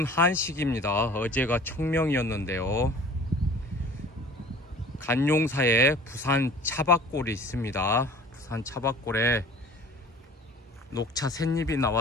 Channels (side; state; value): both; normal; correlation 0.46